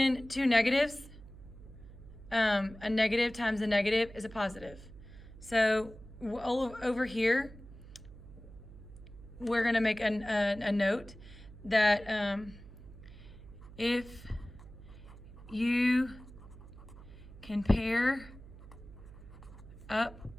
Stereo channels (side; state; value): right; noise; hum, 17 dB below the sound